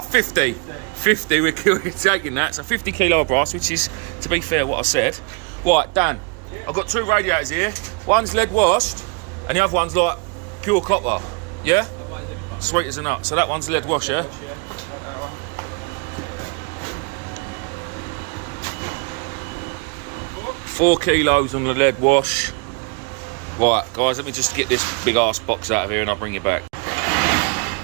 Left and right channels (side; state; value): left; quieter; 32.4 dB